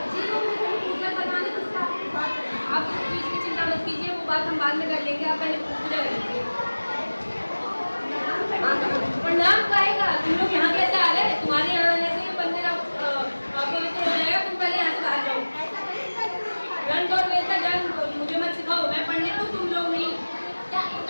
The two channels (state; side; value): inverted; both; correlation -1.00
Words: जी वो मुझे पूजा करवाने तो उससे आपसे बात करनी है। आप इस चीज की चिंता मत कीजिए वो बात हम बाद में कर लेंगे। आप पहले पूजा कर लीजिए। प्रणाम कहेगा तुम लोग यहाँ कैसे आ गए? तुम्हारे यहाँ आने से ये मंदिर पवित्र हो जाएगा। तुम पहले यहाँ से बाहर जाओ। गंध और वेद का ज्ञान मुझे मत सिखाओ। मैं पंडित हूँ तुम लोग नहीं। क्या